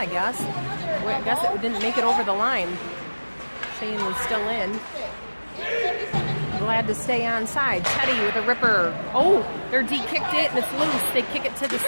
guess. I guess it didn't make it over the line. Cheyenne was still in. Glad to stay on side. Teddy with a ripper. Oh, their D kicked it and it's loose. They kick it to the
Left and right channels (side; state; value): both; inverted; correlation -1.00